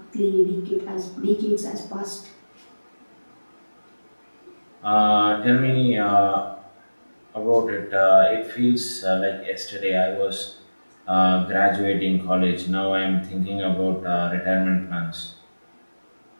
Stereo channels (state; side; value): inverted; both; correlation -1.00